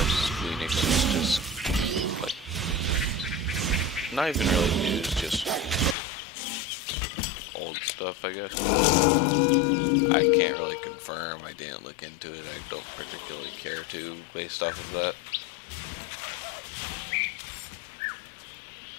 was just like not even really news, just old stuff, I guess. I can't really confirm. I didn't look into it. I don't particularly care to based off of that.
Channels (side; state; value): right; drops out; at 6.0 s